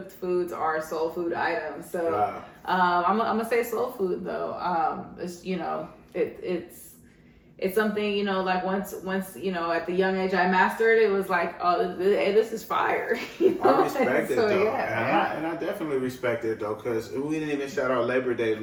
foods are soul food items. So I'm gonna say soul food though. It's something, like once at the young age I mastered, it was like, oh, hey, this is fire. I respect it, so, though. Yeah, and I definitely respect it, though, because we didn't even shout out Labor Day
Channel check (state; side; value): identical; both; correlation 1.00